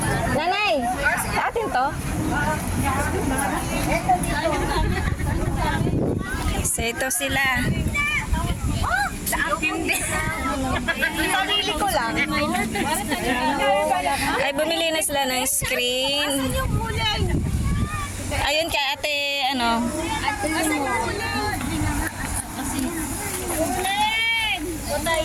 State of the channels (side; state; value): both; identical; correlation 1.00